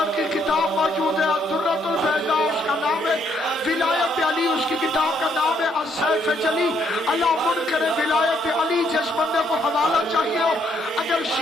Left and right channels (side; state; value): both; normal; correlation 0.70